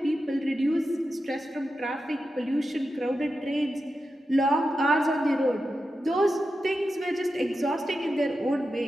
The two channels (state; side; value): normal; both; correlation 0.90